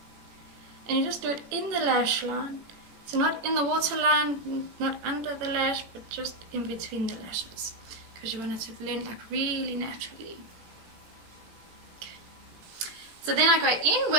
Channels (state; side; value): late; left; 18 ms